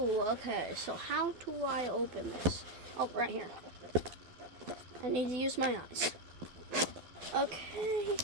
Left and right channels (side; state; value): left; late; 12 ms